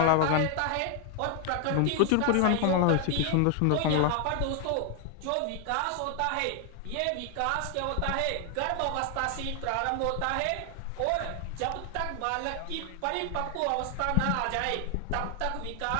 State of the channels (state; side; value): different; both; correlation 0.00